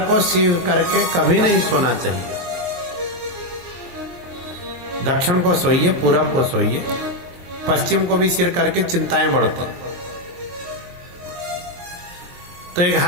को सिर करके कभी नहीं सोना चाहिए। दक्षिण को सोइए, पूरब को सोइए, पश्चिम को भी सिर करके चिंताएं बढ़ती। तो एक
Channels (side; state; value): left; late; 22 ms